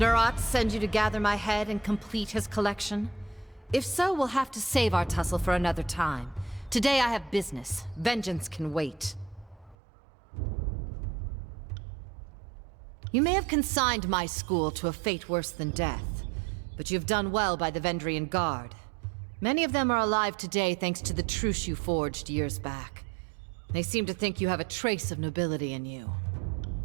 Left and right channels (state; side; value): drops out; left; at 9.8 s